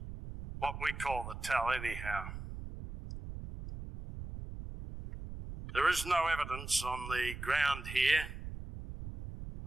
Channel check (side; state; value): right; noise; rumble, 9 dB below the sound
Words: What we call the tell anyhow. There is no evidence on the ground here